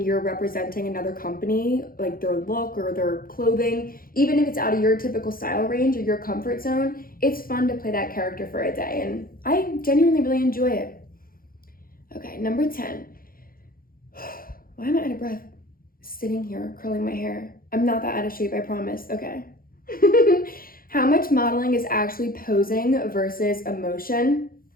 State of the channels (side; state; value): right; late; 0.42 ms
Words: you're representing another company, like their look or their clothing. Even if it's out of your typical style range or your comfort zone, it's fun to play that character for a day, and I genuinely really enjoy it. Okay, number 10. Why am I out of breath? Sitting here, curling my hair. I'm not that out of shape, I promise. Okay. How much modeling is actually posing versus emotion?